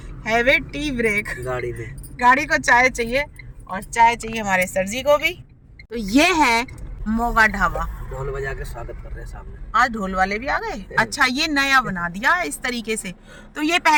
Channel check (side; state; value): both; identical; correlation 1.00